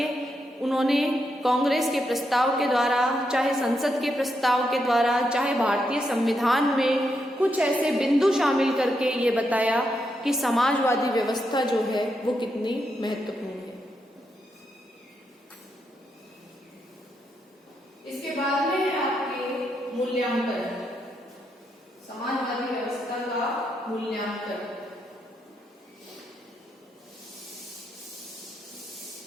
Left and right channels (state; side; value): normal; both; correlation 0.81